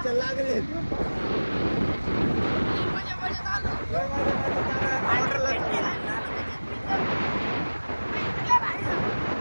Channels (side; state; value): both; inverted; correlation -1.00